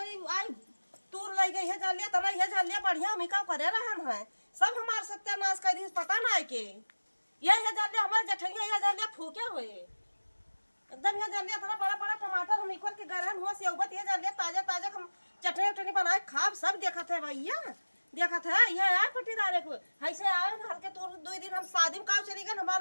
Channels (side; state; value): both; inverted; correlation -1.00